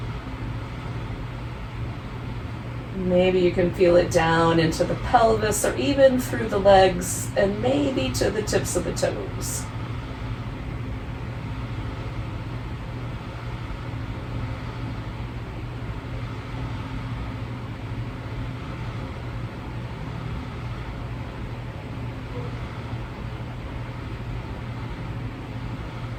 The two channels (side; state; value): both; identical; correlation 1.00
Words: Maybe you can feel it down into the pelvis or even through the legs and maybe to the tips of the toes.